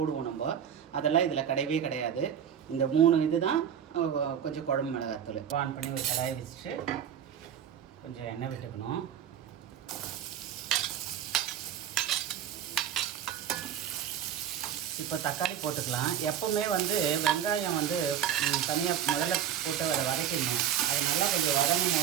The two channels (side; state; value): left; quieter; 9.3 dB